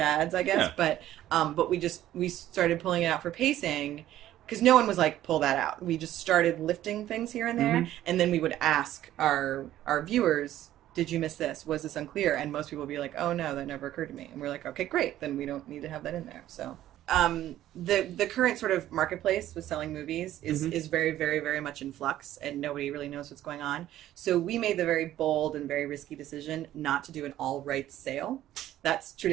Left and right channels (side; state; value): left; quieter; 13.2 dB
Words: I guess. Yeah. But we started pulling it out for pacing, because no one was like, pull that out. We just started lifting things here and there, and then we would ask our viewers, did you miss this? Was this unclear? And most people would be like, oh no, that never occurred to me. And we're like, okay, great, then we don't need to have that in there. So the current sort of marketplace with selling movies is very, very, very much in flux, and nobody really knows what's going on. So we made the very bold and very risky decision not to do an all rights sale. That's